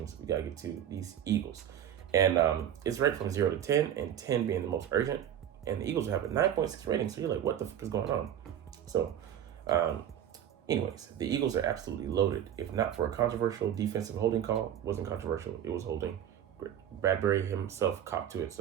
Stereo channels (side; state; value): left; quieter; 10.2 dB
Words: we got to get to these Eagles. And it's ranked from 0 to 10, and 10 being the most urgent. And the Eagles have a 9.6 rating, so you're like, what the fuck is going on? So, anyways, the Eagles are absolutely loaded. If not for a controversial defensive holding call, wasn't controversial, it was holding. Bradbury himself copped to it,